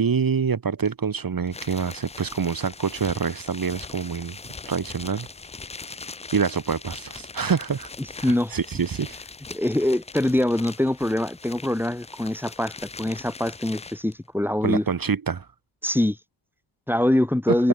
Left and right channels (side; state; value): both; normal; correlation 0.50